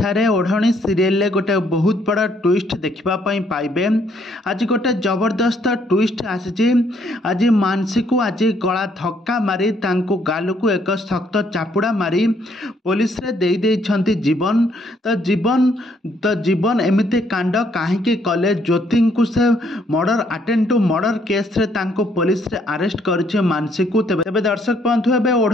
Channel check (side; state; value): both; normal; correlation 0.69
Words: ओढ़णी सीरियल गोटे बहुत बड़ा ट्विस्ट देखापी पाइबे। आज गोटे जबरदस्त ट्विस्ट आसी। आज मानसी को आज गला धक्का मारी गाल को एक शक्त चापुड़ा मारी पुलिस रे दे देइछंती जीवन। तो जीवन एमती कांड कहीं कले ज्योति को से murder attempt to murder case रे पुलिस रे अरेस्ट कर मानसी को। तेबे दर्शक बंधु एबे